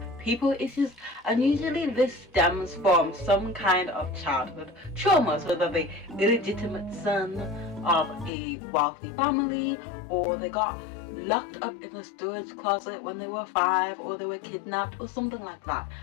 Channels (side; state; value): right; drops out; at 8.3 s